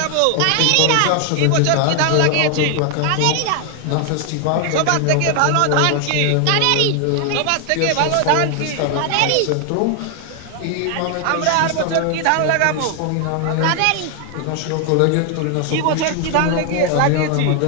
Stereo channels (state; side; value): different; both; correlation 0.00